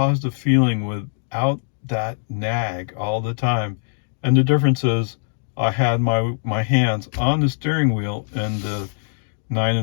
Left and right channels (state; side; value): silent; right; digital silence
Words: feeling without that nag all the time. And the difference is I had my hands on the steering wheel in the 9